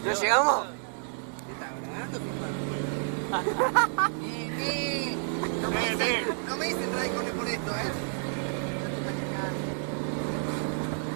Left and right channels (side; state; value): left; silent; 58 dB below the other